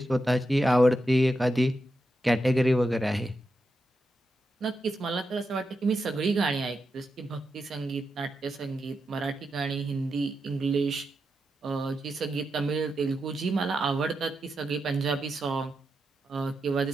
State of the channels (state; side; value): normal; both; correlation 0.87